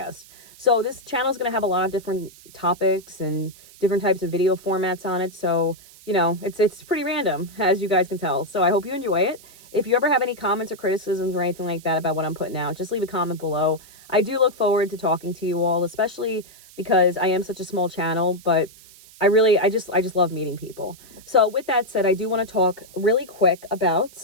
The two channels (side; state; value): right; noise; hiss, 22 dB below the sound